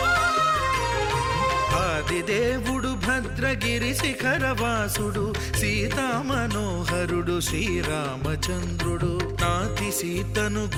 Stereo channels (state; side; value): identical; both; correlation 1.00